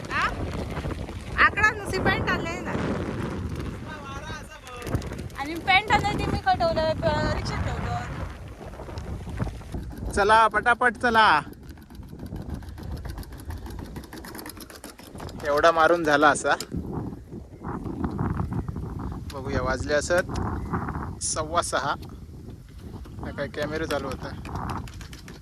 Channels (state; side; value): identical; both; correlation 1.00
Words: हा आकडा नुसती पेंट आणलेली ना. आणि पेंट आणली ती मी खटवलं रिक्षात ठेवलं. चला पटापट चला. एवढा मारून झाला असा. बघूया वाजले असत 6:15. काय कॅमेरा चालू होता.